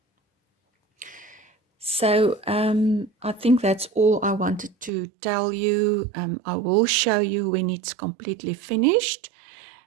So I think that's all I wanted to tell you. I will show you when it's completely finished,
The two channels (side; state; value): left; drops out; at 4.9 s